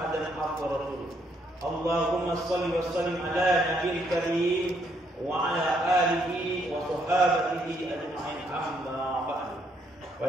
abduhu wa rasuluh. Allahumma shalli wa sallim ala nabiyil karim wa ala alihi wa sahbihi ajma'in, amma ba'du.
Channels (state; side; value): normal; both; correlation 0.72